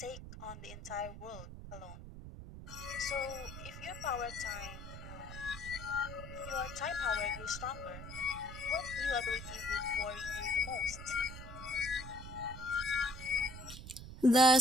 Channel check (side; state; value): right; noise; rumble, 11 dB below the sound